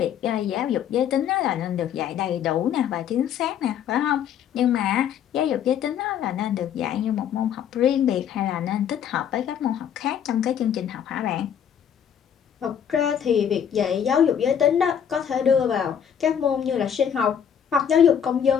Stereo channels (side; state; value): right; quieter; 8.7 dB